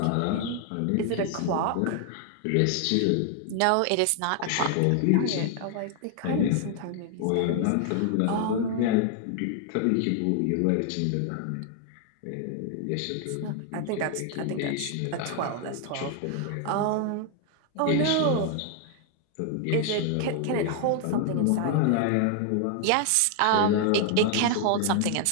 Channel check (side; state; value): both; different; correlation 0.00